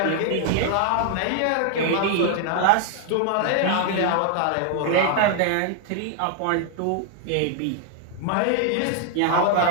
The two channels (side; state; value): both; different; correlation 0.00